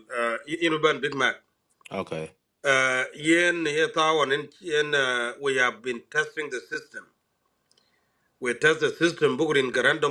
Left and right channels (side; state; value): both; identical; correlation 1.00